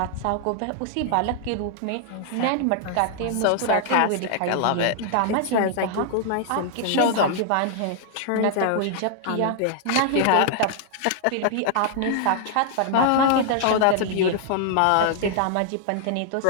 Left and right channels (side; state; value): both; different; correlation 0.00